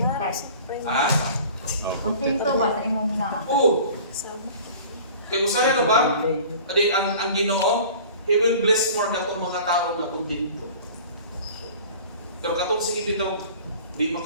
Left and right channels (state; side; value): inverted; both; correlation -0.44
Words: Ha? Kontento ba sa imong na? Oo. Kaya usaya na ba? Adi, ang Ginoo, He will bless more katong mga tao na kontento. Pero katong sige dito, di